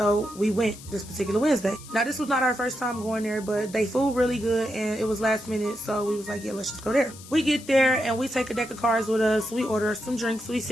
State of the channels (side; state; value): left; noise; hiss, 18 dB below the sound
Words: we went this particular Wednesday. Now, this was not our first time going there, but they food really good, and it was last minute, so we was like, yeah, let's just go there. We get there, and we take a deck of cards with us. We order some drinks. We